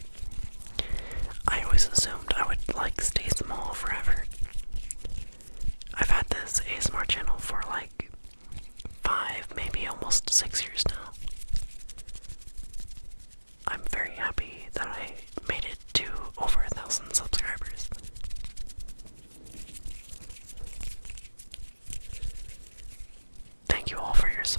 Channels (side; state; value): both; inverted; correlation -1.00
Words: I always assumed I would stay small forever. I've had this ASMR channel for 5, maybe almost 6 years now. I'm very happy that I made it to over 1,000 subscribers. Thank you all for your